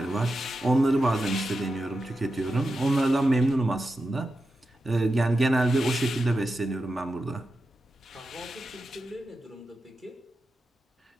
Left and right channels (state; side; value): normal; both; correlation 0.90